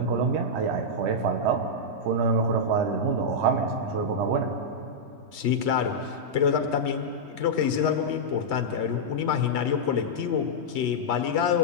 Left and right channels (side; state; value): left; late; 3.2 ms